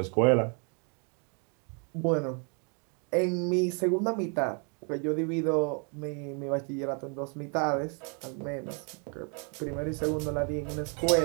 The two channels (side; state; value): left; quieter; 37.4 dB